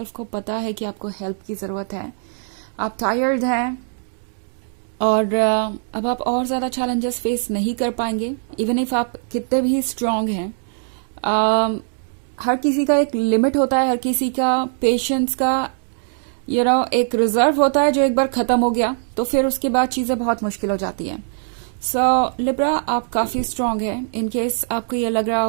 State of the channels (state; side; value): silent; left; 65 dB below the other